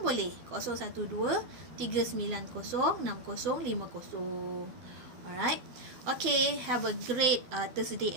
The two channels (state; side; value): late; left; 12 ms